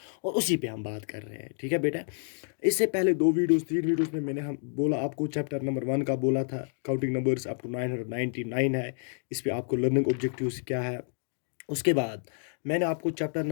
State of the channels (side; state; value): right; silent; 58 dB below the other